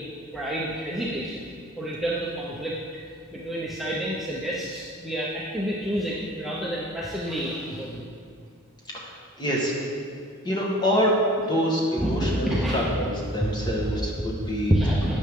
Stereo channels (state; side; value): normal; both; correlation 0.52